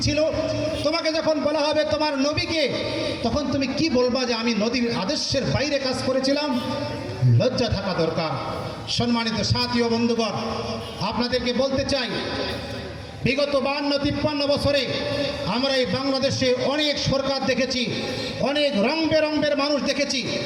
ছিল? তোমাকে যখন বলা হবে তোমার নবীকে, তখন তুমি কি বলবা যে আমি নবীর আদর্শের বাইরে কাজ করেছিলাম? লজ্জা থাকা দরকার। সম্মানিত সাথী ও বন্ধুগণ, আপনাদেরকে বলতে চাই, বিগত 52-53 বছরে আমরা এই বাংলাদেশে অনেক সরকার দেখেছি, অনেক রং বেরঙের মানুষ দেখেছি,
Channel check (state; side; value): identical; both; correlation 1.00